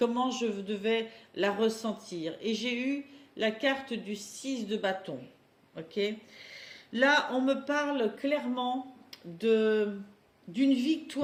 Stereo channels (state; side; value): identical; both; correlation 1.00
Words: je devais la ressentir. Et j'ai eu la carte du 6 de bâton. Ok. Là, on me parle clairement d'une